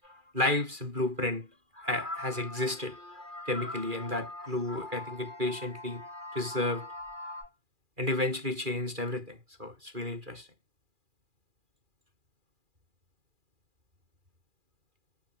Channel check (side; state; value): left; late; 2.4 ms